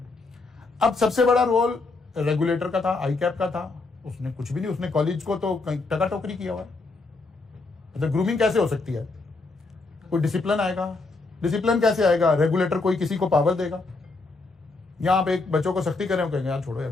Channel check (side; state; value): right; quieter; 3.6 dB